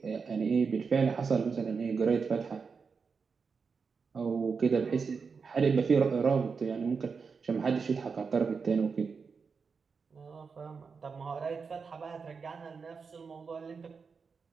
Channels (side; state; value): left; quieter; 5.3 dB